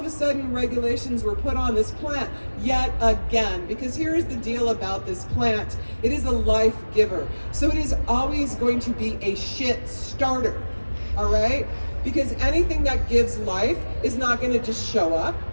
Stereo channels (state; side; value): inverted; both; correlation -1.00